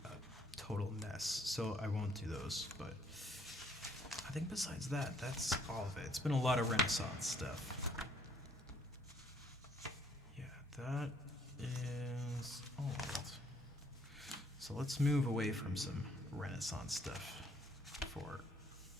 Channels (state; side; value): normal; both; correlation 0.65